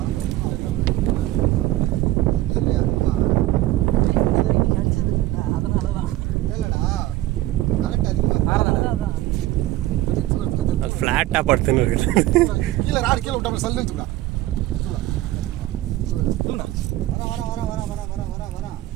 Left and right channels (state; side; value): quieter; left; 16.0 dB